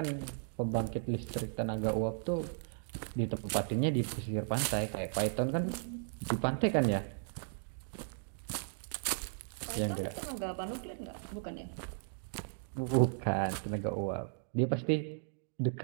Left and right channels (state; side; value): silent; left; digital silence